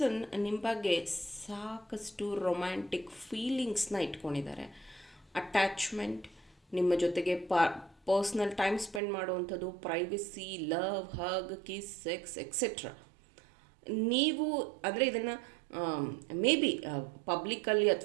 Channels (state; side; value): drops out; left; at 9.0 s